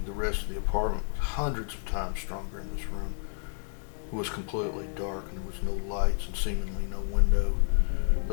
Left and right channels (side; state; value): right; silent; digital silence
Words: the rest of the apartment was hundreds of times stronger in this room. It was completely dark and there was no lights and seemingly no window,